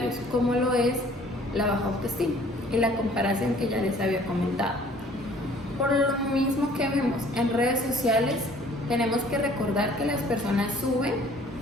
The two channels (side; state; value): both; normal; correlation 0.55